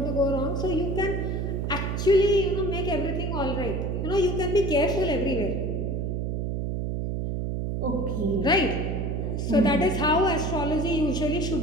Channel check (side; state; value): right; noise; hum, 1 dB below the sound